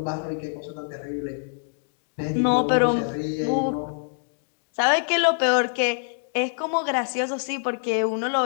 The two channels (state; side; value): silent; right; digital silence